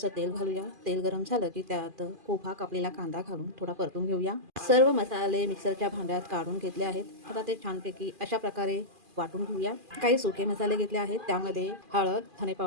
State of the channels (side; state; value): left; late; 2.4 ms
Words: तेल घालूया। तेल गरम झालं की त्यात उभा कापलेला कांदा घालून थोडा परतून घेऊया। सर्व मसाले मिक्सरच्या भांड्यात काढून घेतले आहेत। आता ते छानपैकी अशा प्रकारे वाटून घेऊया। काही सुके मसाले घेतले आहेत, त्यामध्ये हळद, धने